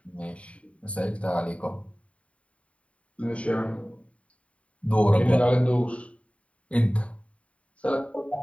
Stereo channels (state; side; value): late; right; 0.064 ms